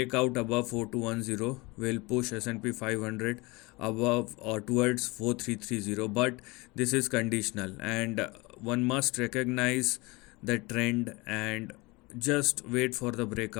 above 4210 will push S&P 500 above or towards 4330, but this is conditional, and one must recognize the trend and just wait for the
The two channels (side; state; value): right; quieter; 24.6 dB